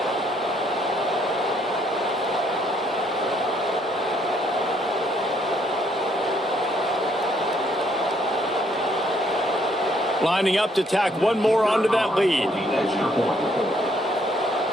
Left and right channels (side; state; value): both; normal; correlation 0.68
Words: Lining up to tack one more onto that lead.